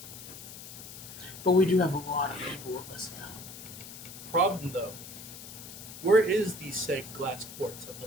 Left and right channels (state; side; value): noise; left; hiss, 13 dB below the sound